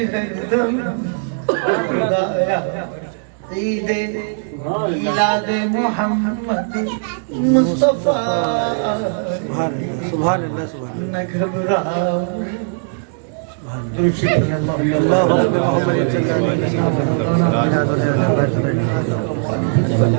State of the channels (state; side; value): silent; left; digital silence